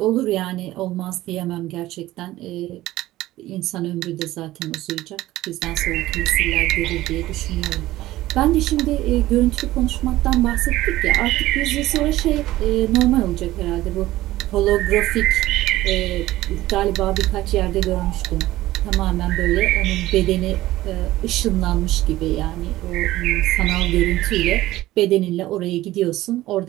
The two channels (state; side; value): quieter; left; 16.2 dB